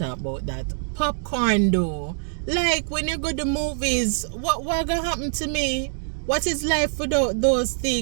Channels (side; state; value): left; silent; digital silence